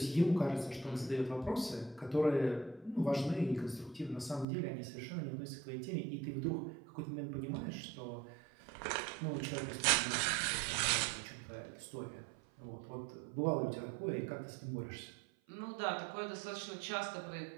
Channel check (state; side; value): drops out; left; at 4.5 s